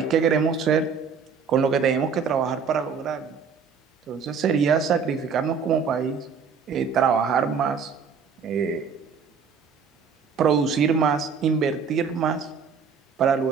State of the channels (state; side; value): quieter; left; 6.0 dB